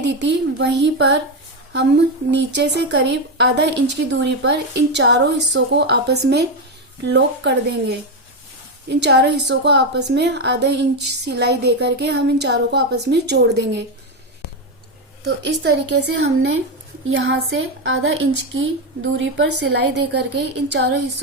थी वहीं पर हम नीचे से करीब आधा इंच की दूरी पर इन चारों हिस्सों को आपस में लॉक कर देंगे। इन चारों हिस्सों को आपस में आधा इंच सिलाई दे करके हम इन चारों को आपस में जोड़ देंगे। तो इस तरीके से हमने यहाँ से आधा इंच की दूरी पर सिलाई दे करके इन चारों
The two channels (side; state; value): both; normal; correlation 0.09